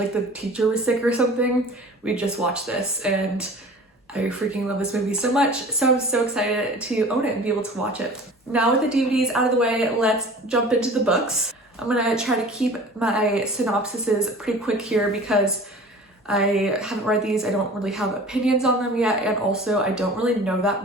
the teacher was sick or something. We'd just watch this and I freaking love this movie so much. So I'm so excited to own it and be able to watch it. Now with the DVDs out of the way, let's jump into the books. I'm gonna try to keep my synopsises pretty quick here because I haven't read these. I don't really have opinions on them yet. And also I don't really know that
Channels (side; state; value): both; normal; correlation 0.42